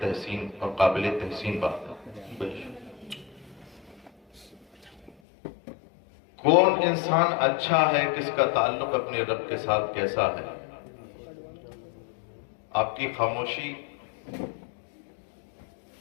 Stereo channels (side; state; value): right; drops out; at 5.2 s